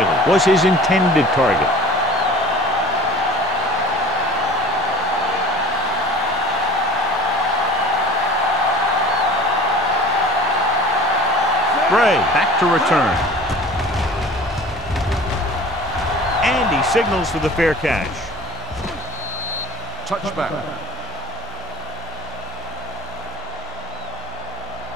was his intended target. Gray back to return. And he signals for the fair catch. Touchback.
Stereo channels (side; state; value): both; normal; correlation 0.43